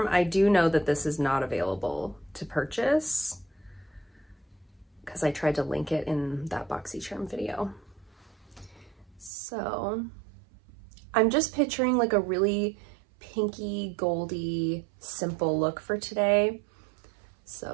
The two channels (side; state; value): left; drops out; at 9.3 s